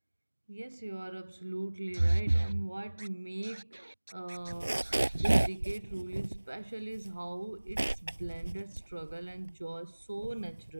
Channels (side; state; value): both; inverted; correlation -1.00